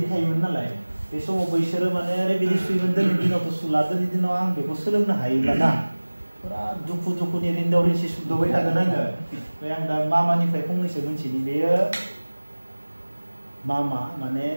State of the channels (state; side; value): inverted; both; correlation -1.00